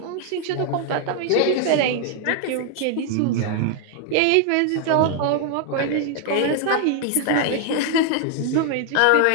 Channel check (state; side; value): different; both; correlation 0.00